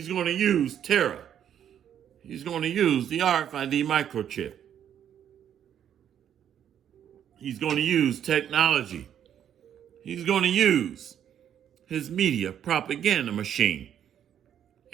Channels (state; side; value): quieter; left; 9.6 dB